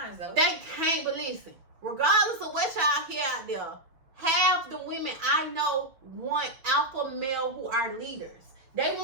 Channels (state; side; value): late; left; 6.3 ms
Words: though. They can't, but listen. Regardless of what y'all hear out there, half the women I know want alpha male who are leaders. They